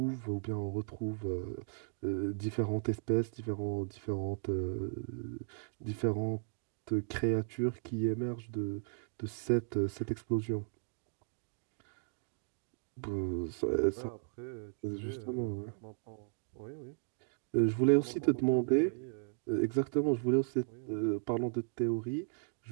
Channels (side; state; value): left; silent; digital silence